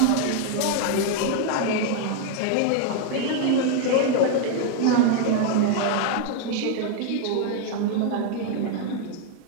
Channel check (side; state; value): both; different; correlation 0.00